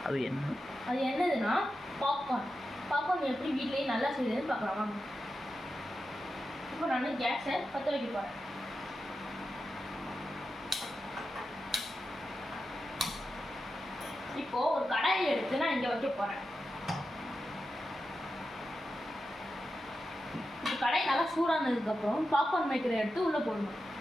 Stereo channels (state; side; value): normal; both; correlation 0.90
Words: அது என்னதுன்னா பாப்கார்ன் எப்படி வீட்லேயே நல்லா செய்யுதுன்னு பார்க்கலாம் வாங்க. இப்போ நான் கேஸை பற்ற வைக்க போகிறேன். இப்போது ஒரு கடாயை எடுத்து நான் இங்கே வைக்க போகிறேன். இப்போ கடாய் நல்லா சூடானதுக்கப்புறம் பாப்கார்ன் மேக்கரை எடுத்து உள்ளே போடணும்.